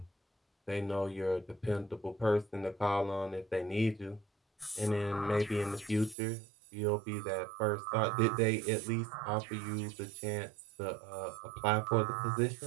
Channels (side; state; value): left; drops out; at 6.2 s